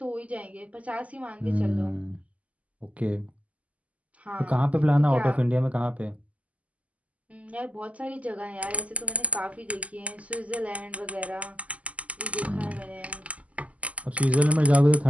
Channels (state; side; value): late; left; 0.069 ms